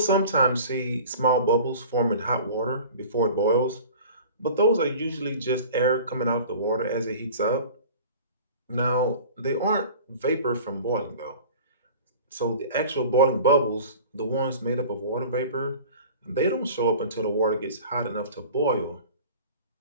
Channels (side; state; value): both; inverted; correlation -0.41